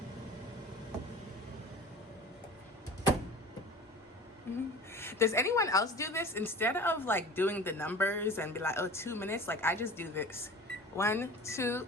Does anyone else do this? Instead of like doing the numbers and be like, oh, 2 minutes, like I just do this. 1, 2,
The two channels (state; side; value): normal; both; correlation 0.39